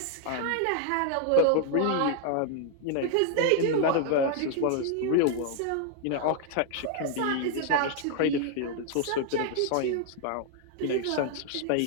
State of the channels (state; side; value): different; both; correlation 0.00